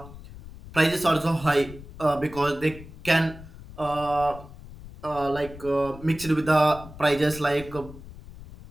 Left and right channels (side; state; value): left; noise; rumble, 16 dB below the sound